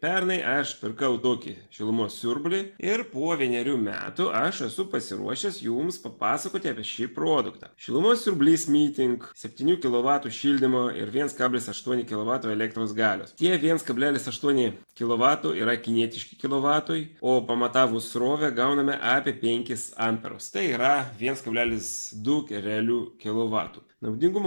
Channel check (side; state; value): both; inverted; correlation -1.00